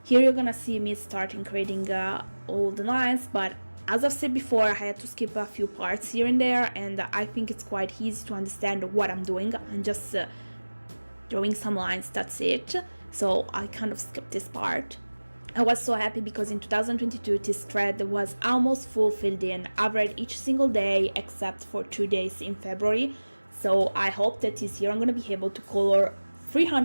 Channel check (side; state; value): both; inverted; correlation -1.00